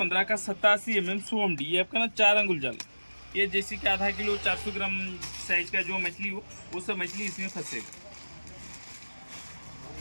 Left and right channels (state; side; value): inverted; both; correlation -1.00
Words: का 87 100 MD, ये आपका ना 4 अंगुल जाल। ये जैसे कि आधा किलो 400 ग्राम साइज का जो मछली हो वो सब मछली इसमें फंसेगा।